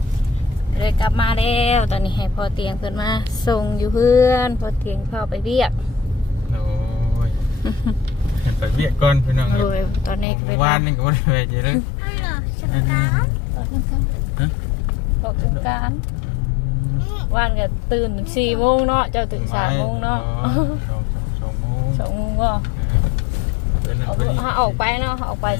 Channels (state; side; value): drops out; right; at 10.2 s